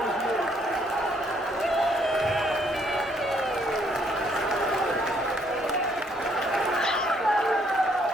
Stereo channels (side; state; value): both; normal; correlation 0.68